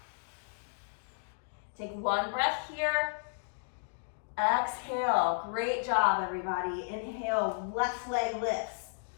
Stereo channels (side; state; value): right; silent; digital silence